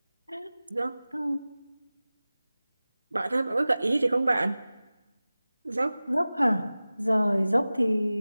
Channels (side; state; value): both; inverted; correlation -0.97